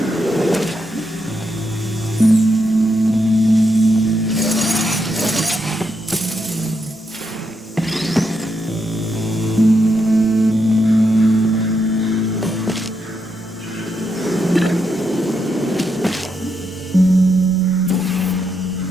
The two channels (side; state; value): both; normal; correlation 0.81